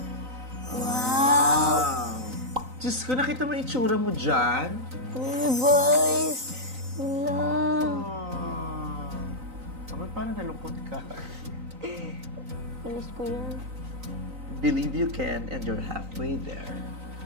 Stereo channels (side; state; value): left; late; 3.9 ms